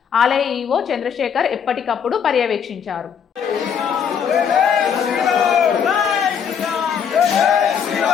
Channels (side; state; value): right; quieter; 7.5 dB